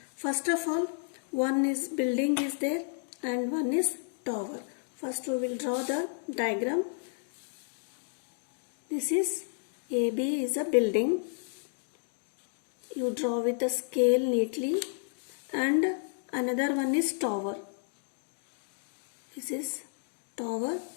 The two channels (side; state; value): right; silent; digital silence